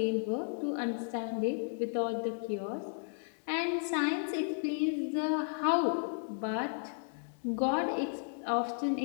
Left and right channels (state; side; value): silent; right; digital silence